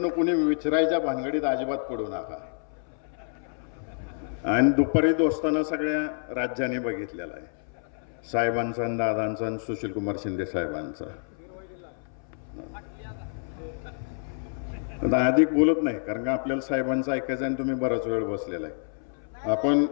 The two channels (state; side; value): silent; right; 59 dB below the other